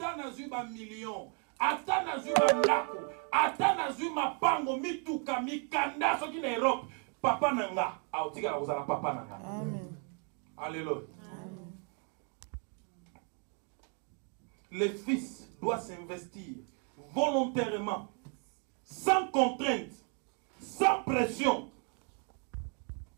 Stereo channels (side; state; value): left; quieter; 39.5 dB